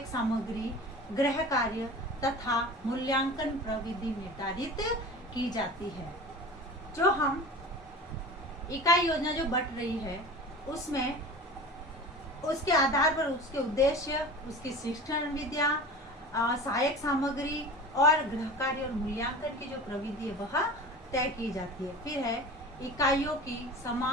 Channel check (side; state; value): both; normal; correlation 0.35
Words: सामग्री, गृह कार्य तथा मूल्यांकन प्रविधि निर्धारित की जाती है। जो हम इकाई योजना जो बट रही है उसमें उसके आधार पर उसके उद्देश्य, उसकी शिक्षण विद्या, सहायक सामग्री और गृह कार्य और मूल्यांकन की जो प्रविधि है वह तय की जाती है। फिर है इकाइयों की